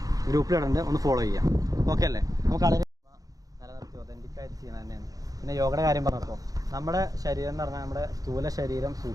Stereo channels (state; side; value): late; left; 0.17 ms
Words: ഗ്രൂപ്പിലിടുന്നുണ്ട്, ഒന്ന് ഫോളോ ചെയ്യാം. ഓക്കെ അല്ലേ? നമുക്ക് കളരി നിലനിർത്തി ഒതൻറ്റിക്കായിട്ട് ചെയ്യുന്നത് തന്നെയാണ്. പിന്നെ യോഗയുടെ കാര്യം പറഞ്ഞപ്പോൾ നമ്മുടെ ശരീരം എന്ന് പറഞ്ഞാൽ നമ്മുടെ സ്ഥൂല ശരീരം,